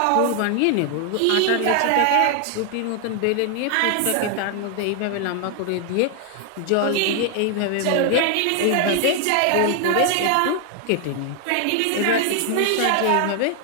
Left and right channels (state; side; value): different; both; correlation 0.00